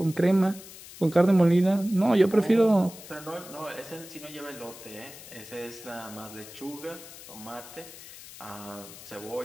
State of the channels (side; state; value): left; noise; hiss, 16 dB below the sound